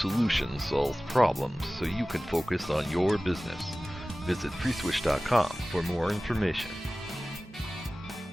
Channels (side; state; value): both; normal; correlation 0.97